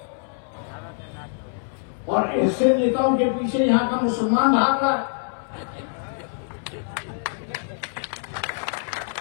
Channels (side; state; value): right; silent; 62 dB below the other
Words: और ऐसे नेताओं के पीछे यहां का मुसलमान भागा।